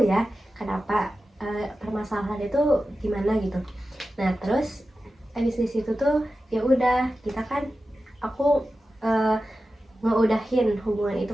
ya kenapa permasalahan itu gimana gitu. Nah terus abis di situ tuh ya udah kita kan aku ngeudahin hubungan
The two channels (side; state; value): both; normal; correlation 0.93